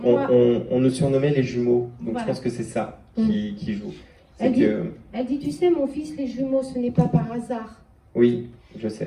on nous surnommait les jumeaux, donc voilà. Je pense que c'est ça qui joue. Elle dit, tu sais, mon fils, les jumeaux, ce n'est pas par hasard. Oui, je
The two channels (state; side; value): identical; both; correlation 1.00